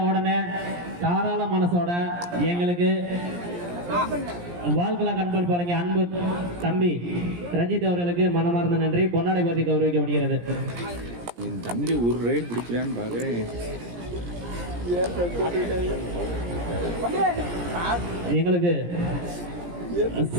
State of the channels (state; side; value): late; left; 17 ms